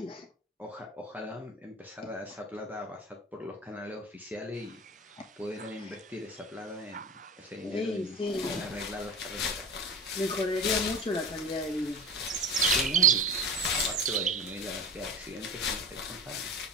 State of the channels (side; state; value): both; normal; correlation 0.32